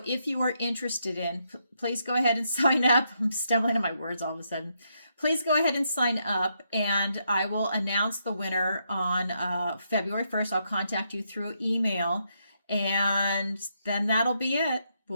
if you are interested in, please go ahead and sign up. I'm stumbling on my words all of a sudden. Please go ahead and sign up, and I will announce the winner on February 1st. I'll contact you through email, and then that'll be it.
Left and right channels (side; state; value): both; inverted; correlation -0.79